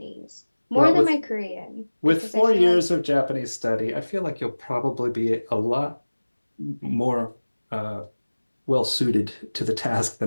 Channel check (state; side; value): inverted; both; correlation -1.00